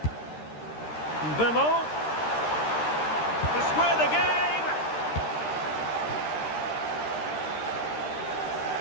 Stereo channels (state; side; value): late; right; 13 ms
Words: Bemo. To square the game.